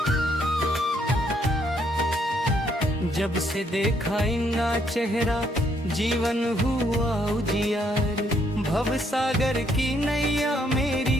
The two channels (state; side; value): normal; both; correlation 0.71